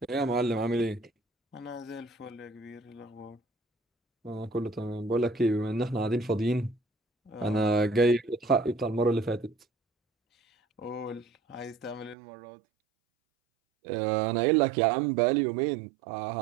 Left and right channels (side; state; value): left; drops out; at 12.2 s